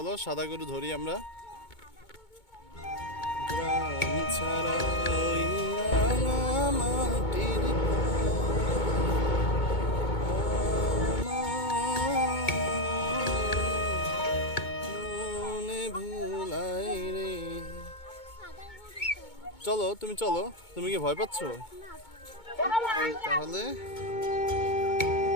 সাদা গরু ধরি আমরা। গ্রাম ছাড়া ওই রাঙা মাটির মনে ভুলাই রে। চলো তুমি চলো, তুমি কি ভয় পাচ্ছো? তাহলে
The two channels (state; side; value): late; right; 2.2 ms